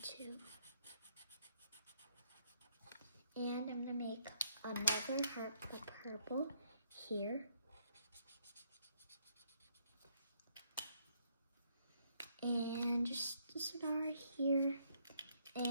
And I'm gonna make another heart with purple here. And just a star here.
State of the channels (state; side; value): inverted; both; correlation -0.71